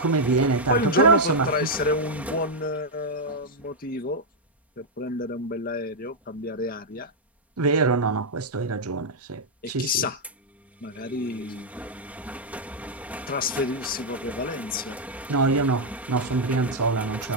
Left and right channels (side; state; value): both; normal; correlation -0.02